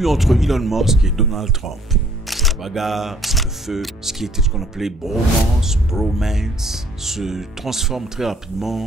entre Elon Musk et Donald Trump. La bagarre, le feu, ce qui était ce qu'on appelait bromance se transforme très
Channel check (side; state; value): both; normal; correlation 0.61